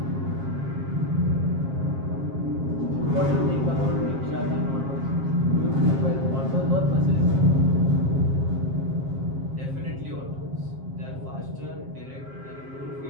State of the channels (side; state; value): left; late; 7.5 ms